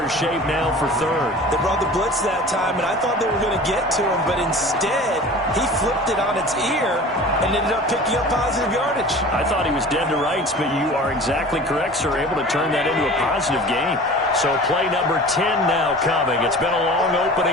shape now for 3rd. They brought the blitz that time, and I thought they were going to get to him, but instead he flipped it on its ear and ended up picking up positive yardage. I thought he was dead to rights, but you are exactly correct, sir. Able to turn that into a positive gain. So play number 10 now coming. It's been a long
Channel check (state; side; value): normal; both; correlation 0.40